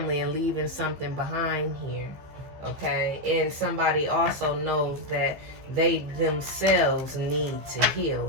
and leaving something behind here, okay? And somebody also knows that they themselves need to heal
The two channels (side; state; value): left; late; 15 ms